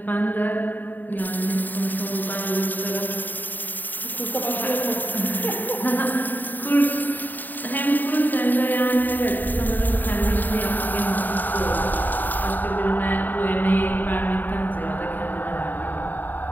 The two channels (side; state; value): right; late; 0.088 ms